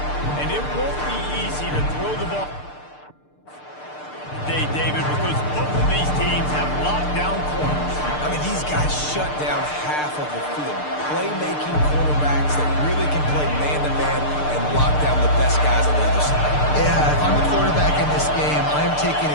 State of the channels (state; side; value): late; right; 6.7 ms